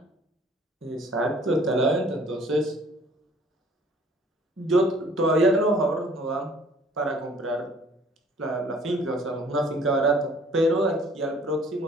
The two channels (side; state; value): both; normal; correlation 0.55